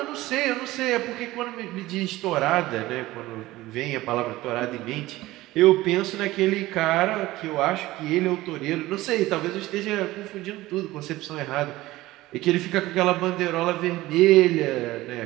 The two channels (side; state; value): left; quieter; 17.6 dB